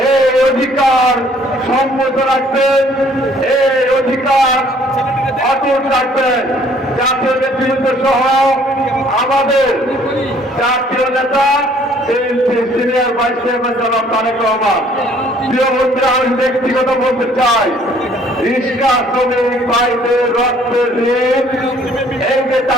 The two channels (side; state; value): both; normal; correlation 0.59